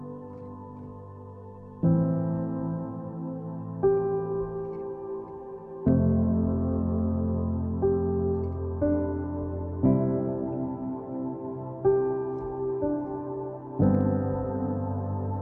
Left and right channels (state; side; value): identical; both; correlation 1.00